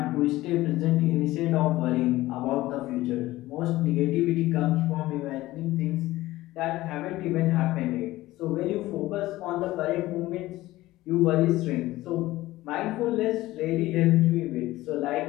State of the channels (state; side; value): quieter; right; 17.3 dB